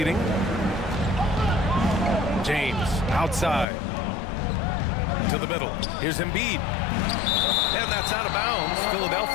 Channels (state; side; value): drops out; right; at 3.7 s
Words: James outside. To the middle. Here's Embiid. And that's out of bounds.